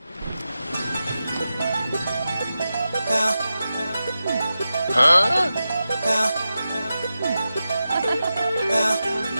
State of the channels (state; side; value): inverted; both; correlation -0.92